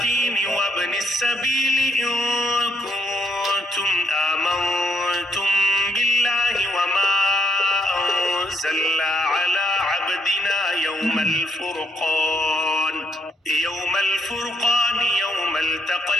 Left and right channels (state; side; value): normal; both; correlation 0.73